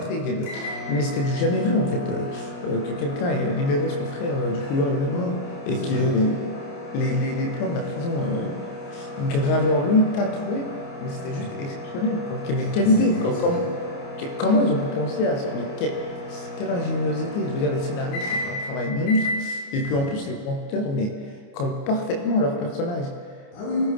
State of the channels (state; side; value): late; right; 29 ms